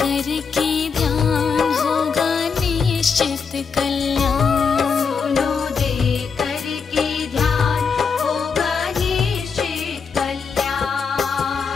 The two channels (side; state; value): right; quieter; 5.7 dB